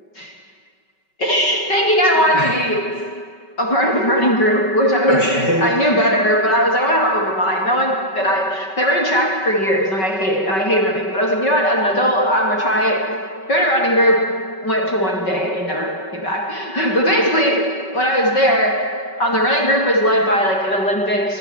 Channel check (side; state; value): right; late; 5.3 ms